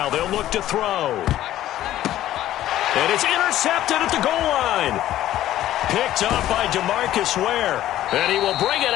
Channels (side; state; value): right; quieter; 13.4 dB